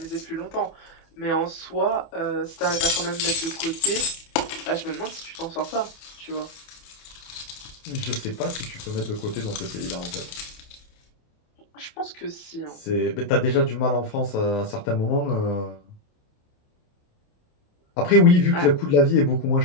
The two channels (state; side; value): late; right; 28 ms